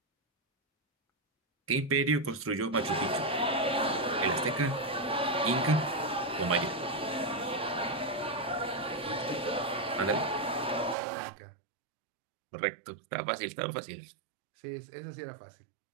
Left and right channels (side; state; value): left; drops out; at 11.0 s